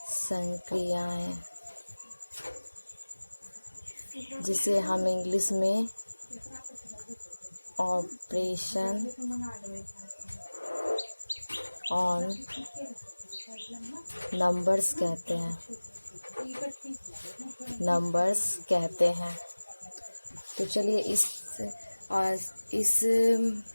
संक्रियाएं, जिसे हम इंग्लिश में ऑपरेशन ऑन नंबर्स कहते हैं। तो चलिए इस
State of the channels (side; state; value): both; inverted; correlation -1.00